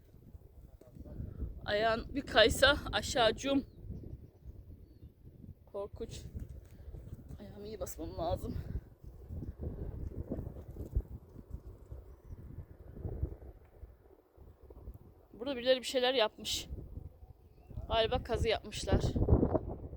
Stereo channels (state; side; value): identical; both; correlation 1.00